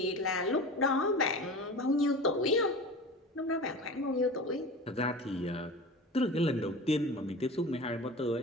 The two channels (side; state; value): both; normal; correlation 0.33